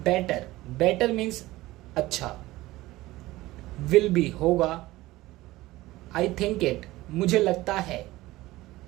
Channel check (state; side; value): quieter; left; 18.1 dB